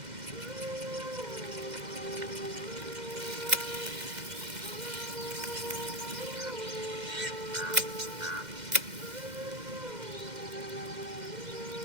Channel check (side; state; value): left; late; 2.1 ms